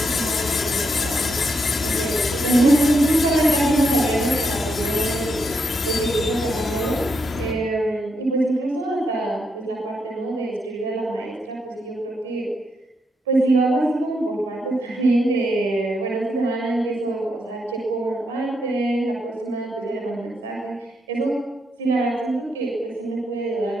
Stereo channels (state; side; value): normal; both; correlation 0.80